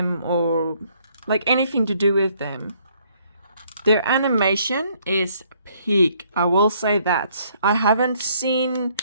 or like anything to do with them? Their animation is peak, I will say that. I haven't seen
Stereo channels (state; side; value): inverted; both; correlation -0.66